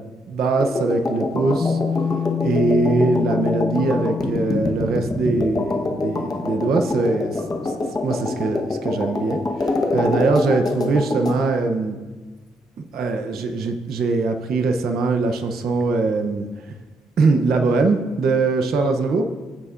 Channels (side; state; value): both; normal; correlation 0.76